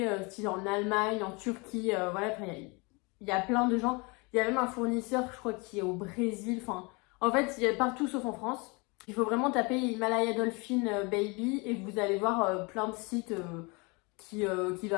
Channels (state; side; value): quieter; right; 28.7 dB